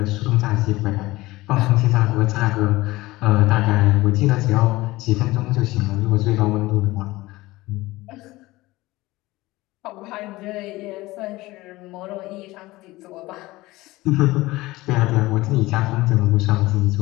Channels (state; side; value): quieter; right; 19.3 dB